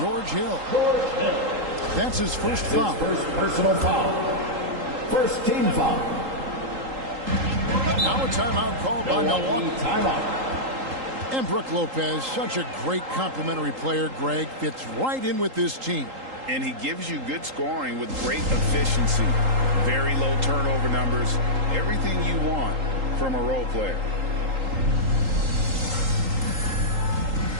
Hill. That's his first foul. First personal foul. First team foul. Now a timeout called by Milwaukee. Timeout. And Brook Lopez, such a great complimentary player, Greg, fits right in with this team. And he gives you good scoring with great efficiency. Very low turnover numbers. Everything you want from a role player.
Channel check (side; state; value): left; late; 3.8 ms